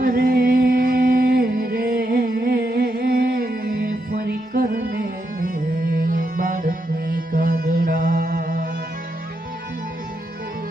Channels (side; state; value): both; normal; correlation 0.82